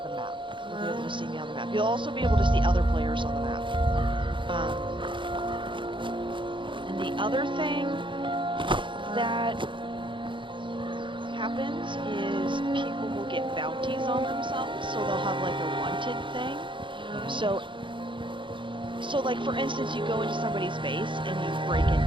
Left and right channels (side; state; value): left; late; 0.24 ms